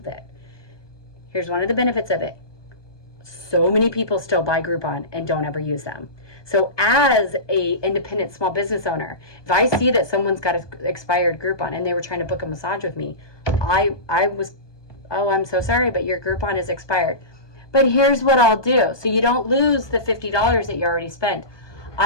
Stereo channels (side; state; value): right; late; 1.2 ms